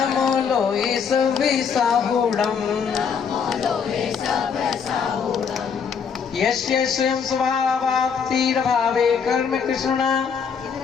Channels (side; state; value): right; quieter; 6.5 dB